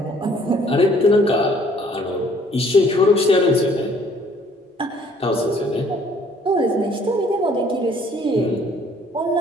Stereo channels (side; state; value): both; normal; correlation 0.59